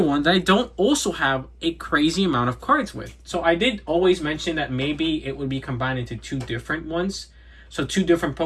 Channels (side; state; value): both; identical; correlation 1.00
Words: that I don't also have a crazy amount of cards with. So, I did always mention that maybe it would be combined into two different ones. So, two different